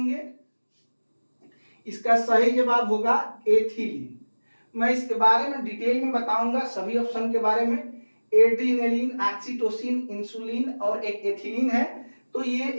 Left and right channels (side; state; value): both; inverted; correlation -1.00